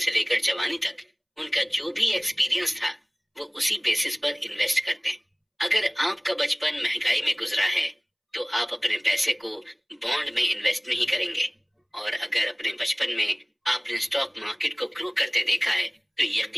लेकर जवानी तक उनका जो भी एक्सपीरियंस था वो उसी बेसिस पर इन्वेस्ट करते हैं। अगर आपका बचपन महंगाई में गुजरा है तो आप अपने पैसे को बॉन्ड में इन्वेस्ट नहीं करेंगे, और अगर अपने बचपन में आपने स्टॉक मार्केट को ग्रो करते देखा है तो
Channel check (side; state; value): both; identical; correlation 1.00